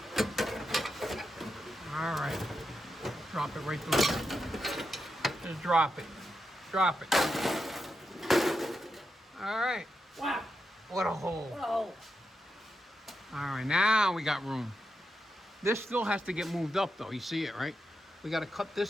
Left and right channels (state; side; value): normal; both; correlation 0.86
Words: All right. Drop it right through. Just drop it. Drop it. All right. Wow. What a hole. Whoa. All right, now we got room. This still has to get moved up, though. You see it, right? We got to cut